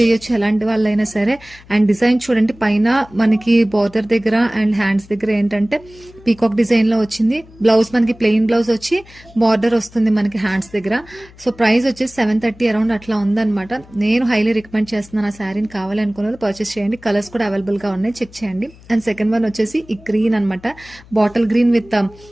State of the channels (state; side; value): noise; left; hum, 23 dB below the sound